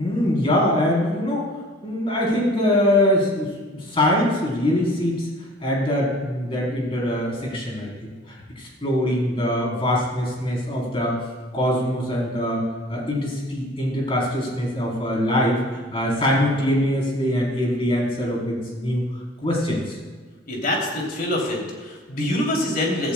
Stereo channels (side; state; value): both; normal; correlation 0.49